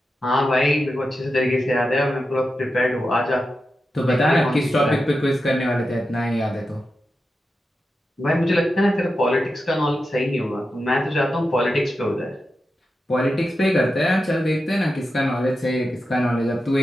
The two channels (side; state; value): both; normal; correlation 0.90